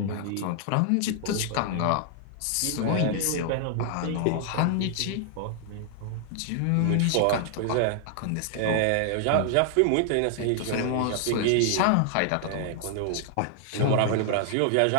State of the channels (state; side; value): different; both; correlation 0.00